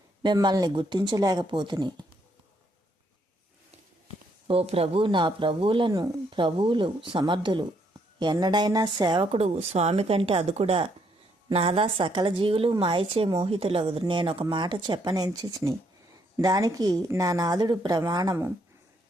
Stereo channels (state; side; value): normal; both; correlation 0.72